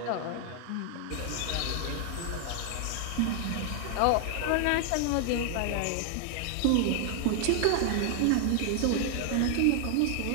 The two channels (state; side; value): different; both; correlation 0.00